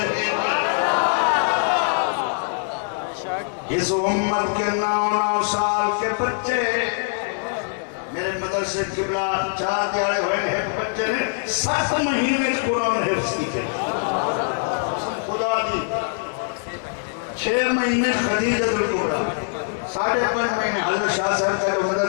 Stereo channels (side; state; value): right; silent; digital silence